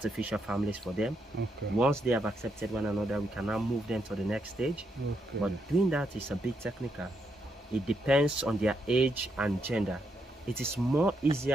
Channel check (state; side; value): normal; both; correlation 0.79